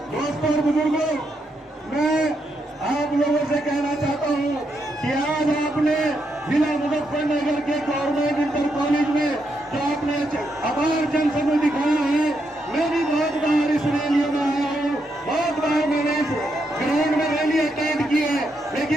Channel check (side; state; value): both; normal; correlation 0.80